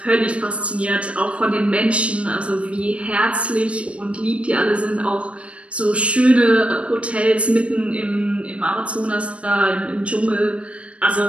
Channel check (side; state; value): left; late; 0.061 ms